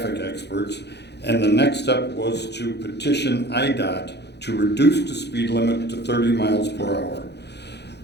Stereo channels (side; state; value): right; late; 0.49 ms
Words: experts, and the next step was to petition IDOT to reduce the speed limit to 30 miles per hour.